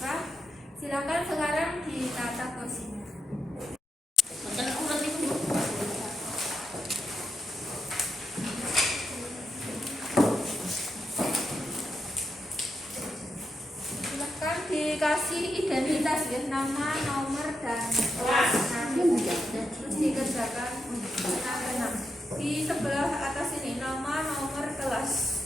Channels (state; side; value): normal; both; correlation 0.84